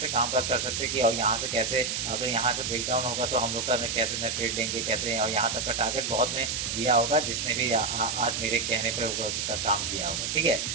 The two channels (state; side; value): noise; right; hiss, 1 dB below the sound